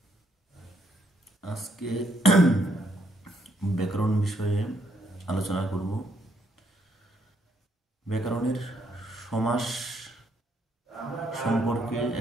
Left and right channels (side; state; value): both; normal; correlation 0.72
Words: আজকে ব্যাকরণ বিষয়ে আলোচনা করব। ব্যাকরণের সমাস সম্পর্কে